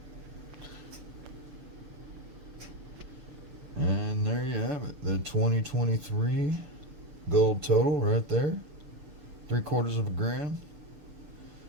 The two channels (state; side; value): late; left; 6.8 ms